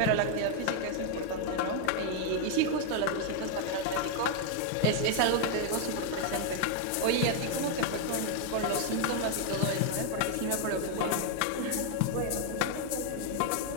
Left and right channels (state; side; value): different; both; correlation 0.00